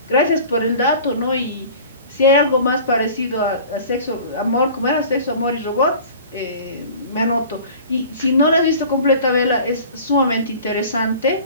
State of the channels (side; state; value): both; inverted; correlation -0.43